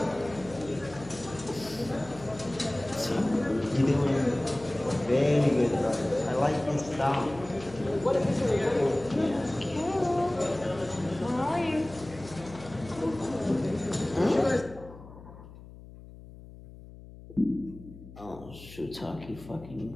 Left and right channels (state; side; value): noise; left; hum, 17 dB below the sound